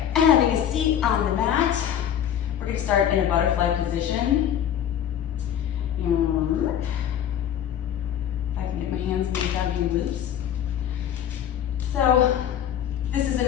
having a seat on the mat. We're gonna start in a butterfly position. If I can get my hands moved down being loose. So this is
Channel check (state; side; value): quieter; right; 9.9 dB